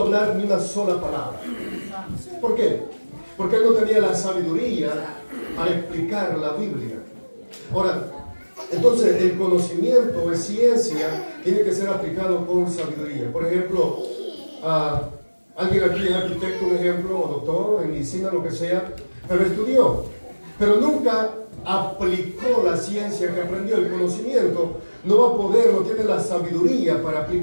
hablar ni una sola palabra. ¿Por qué? Porque él no tenía la sabiduría para explicar la Biblia. Ahora, entonces el conocimiento es ciencia, tiene que ser aplicado con sabiduría. Por ejemplo, alguien aquí es arquitecto, un ejemplo, o doctor en medicina, lo que sea, pero estudió, pero nunca aplicó la ciencia que aprendió, el conocimiento, no va a poder, no tiene la sabiduría para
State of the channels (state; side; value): inverted; both; correlation -1.00